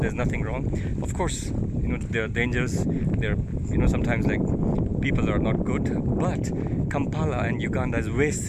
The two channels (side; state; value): both; identical; correlation 1.00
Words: there's nothing wrong. Of course, there are dangers. There, sometimes like people are not good, but Kampala and Uganda is way